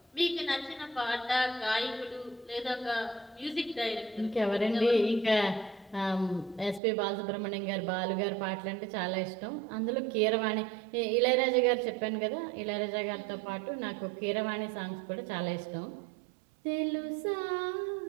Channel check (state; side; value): drops out; left; at 6.8 s